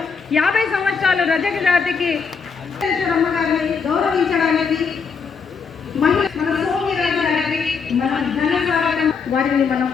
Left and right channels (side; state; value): right; quieter; 5.6 dB